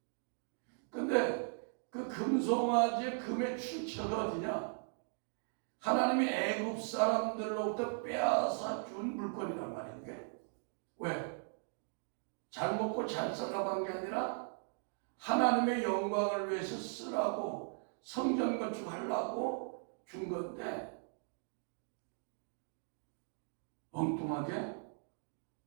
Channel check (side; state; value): left; silent; 52 dB below the other